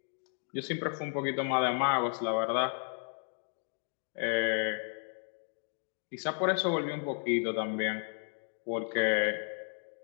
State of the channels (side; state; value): right; silent; 55 dB below the other